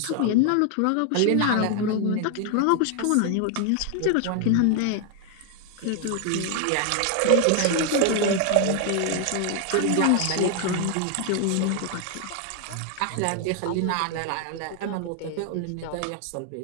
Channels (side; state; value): both; different; correlation 0.00